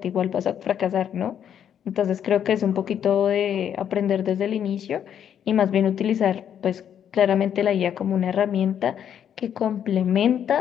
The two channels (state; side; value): quieter; right; 9.1 dB